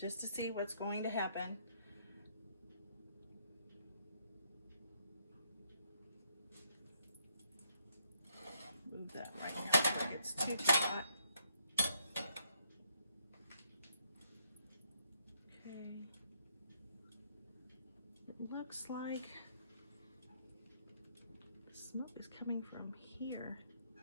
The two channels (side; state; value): both; inverted; correlation -0.73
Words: to see what's going to happen. Move that right now before it gets too hot. Okay. It looks like the smoke is coming from here,